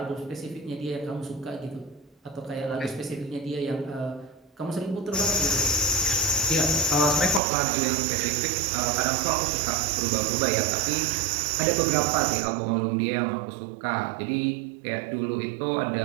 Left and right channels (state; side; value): drops out; left; at 7.4 s